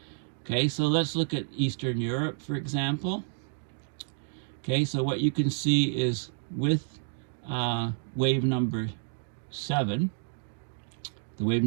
Okay, so let's look at Eastern Europe, for example. Okay, so what you can see is with wave number 7, the wave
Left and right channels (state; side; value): silent; left; 58 dB below the other